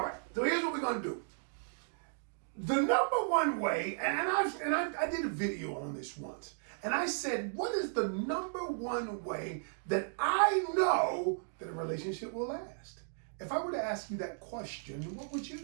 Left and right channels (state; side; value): silent; left; digital silence